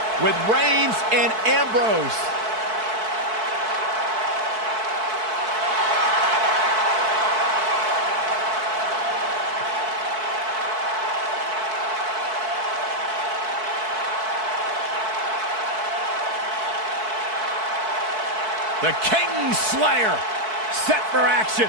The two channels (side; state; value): left; late; 4.6 ms